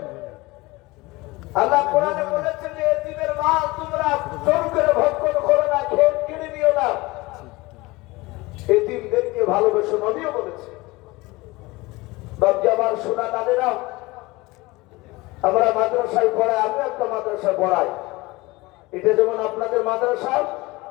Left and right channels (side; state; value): right; quieter; 21.9 dB